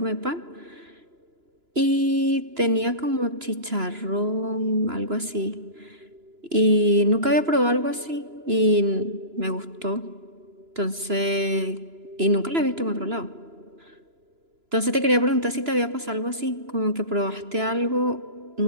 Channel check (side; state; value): left; late; 2.9 ms